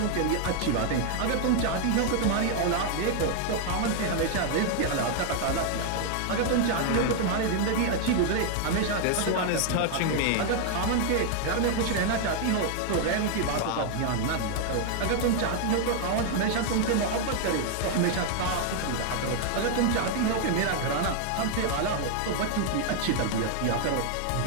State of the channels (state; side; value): different; both; correlation 0.00